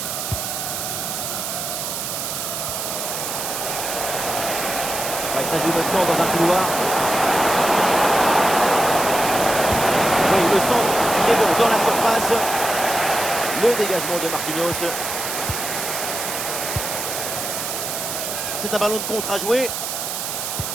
Il s'agit maintenant dans un couloir. Oui, le centre est bon dans la surface. Le dégagement de Marquinhos. C'est un ballon de contre à jouer.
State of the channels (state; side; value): noise; right; hiss, 4 dB below the sound